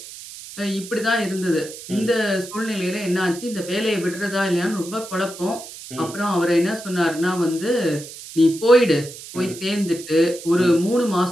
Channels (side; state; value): right; noise; hiss, 14 dB below the sound